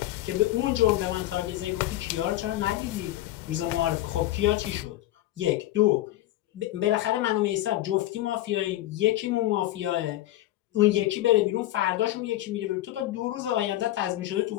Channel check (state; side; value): quieter; right; 15.0 dB